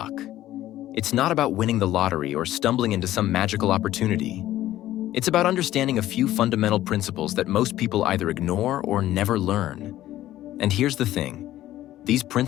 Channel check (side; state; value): right; quieter; 14.0 dB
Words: It's not about winning the lottery or stumbling into some magical opportunity. It's about understanding a few fundamental principles that most people either ignore or never learn. And here's the thing. These